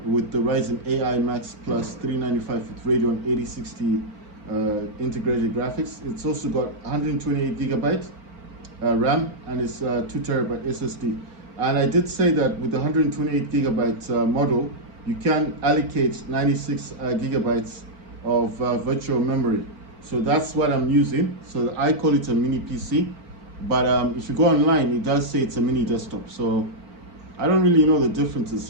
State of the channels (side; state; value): left; late; 4.4 ms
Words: with the Ryzen AI Max Plus 395 with Radeon 8060 integrated graphics. It's also got 128 gigabyte RAM, and it's 2 terabyte SSD. And I did say that with the 128 gigabyte model, you can allocate 96 gigabytes of virtual memory. So that's what I'm using. So I call it a mini PC, but if you go online, it does say it's a mini desktop. So I don't really know the difference. It's